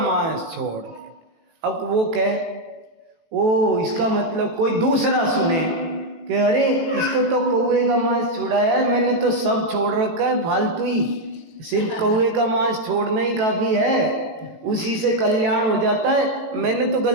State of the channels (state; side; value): late; left; 18 ms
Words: छोड़ दे, अब वो कहे ओ इसका मतलब कोई दूसरा सुने कि अरे इसको तो कौवे का मांस छुड़ाया है, मैंने तो सब छोड़ रखा है, फालतू ही, सिर्फ कौवे का मांस छोड़ना ही काफ़ी है, उसी से कल्याण हो जाता है। मैंने तो